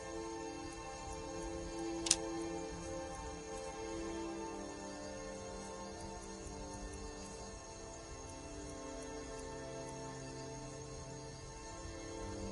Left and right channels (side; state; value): both; identical; correlation 1.00